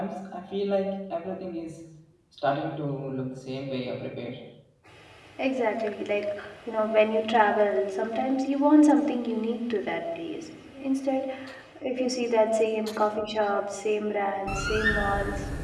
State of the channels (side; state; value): both; identical; correlation 1.00